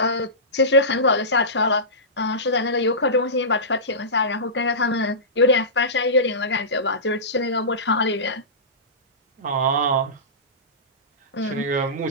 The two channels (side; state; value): both; normal; correlation -0.20